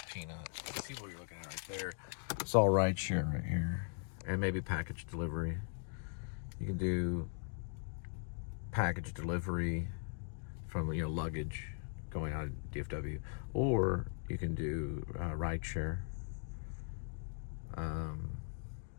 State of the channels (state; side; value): silent; right; 51 dB below the other